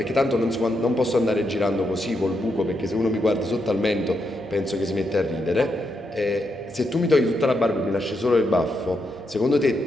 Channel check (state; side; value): normal; both; correlation 0.81